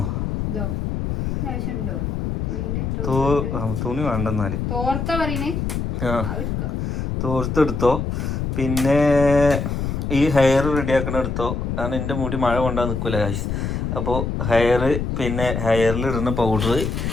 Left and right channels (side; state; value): left; noise; rumble, 2 dB below the sound